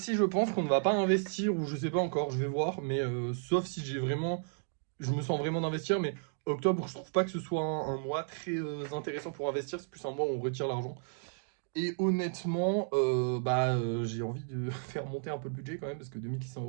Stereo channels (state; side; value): silent; left; digital silence